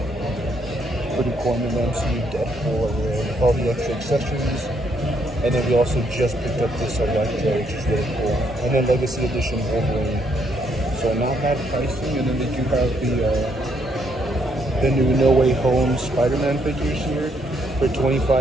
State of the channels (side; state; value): both; normal; correlation 0.72